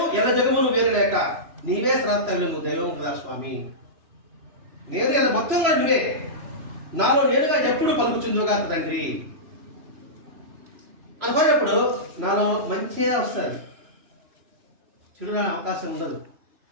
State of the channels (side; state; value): left; late; 3.0 ms